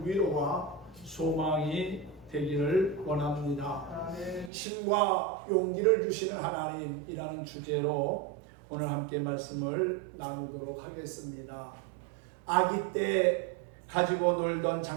위로와 소망이 되기를 원합니다. 힘과 용기를 주시는 하나님이라는 주제로 오늘 함께 말씀을 나누도록 하겠습니다. 아기 때 가지고 놀던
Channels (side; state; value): left; drops out; at 4.5 s